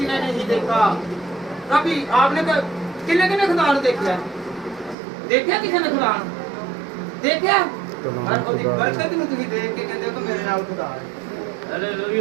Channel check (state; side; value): drops out; left; at 5.0 s